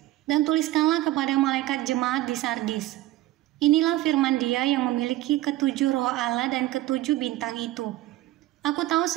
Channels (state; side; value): quieter; left; 16.1 dB